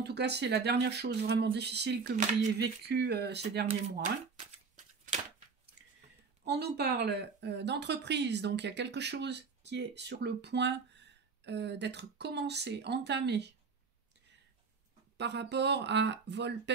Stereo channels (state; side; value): quieter; left; 5.1 dB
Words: tout cas c'est la dernière chose vraiment difficile que vous ayez vécue ces derniers mois. On nous parle d'entreprise, donc il y a quelque chose qui est sur le point d'être commencé, entamé, par rapport à